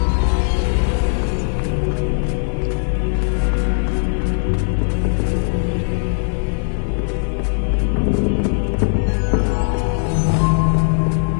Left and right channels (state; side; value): silent; right; 66 dB below the other